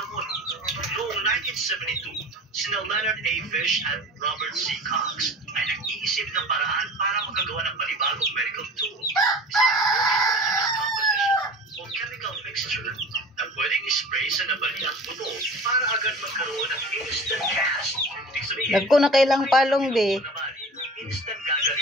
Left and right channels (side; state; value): both; normal; correlation 0.39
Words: Noong 1972, sina Leonard A. Fish at Robert C. Cox ay nag-iisip ng paraan para makagawa ng panibagong medical tool, isang homogeneous composition o chemical mixture na pwedeng ispray sa nabaliang buto para agad magkaroon ng instant cast. Nagko na kailang palong be. Instant